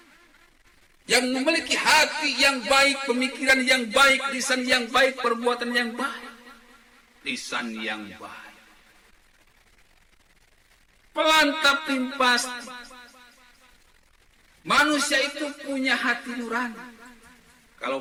yang memiliki hati yang baik, pemikiran yang baik, lisan yang baik, perbuatan yang baik. Lisan yang baik. Pelan tapi pasti. Manusia itu punya hati nurani.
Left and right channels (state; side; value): identical; both; correlation 1.00